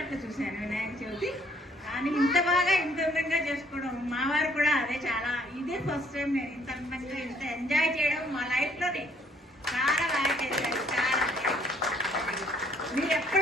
చూశాను వినాయక చవితి, కానీ ఇంత బాగా ఇంత అందంగా చేసుకోవడం మా వారు కూడా అదే చాలా ఇదే ఫస్ట్ టైం నేను ఇంత అందంగా ఇంత ఎంజాయ్ చేయడం మా లైఫ్లోనే. చాలా బాగా చేశారు. చాలా మీరు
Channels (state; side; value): normal; both; correlation 0.64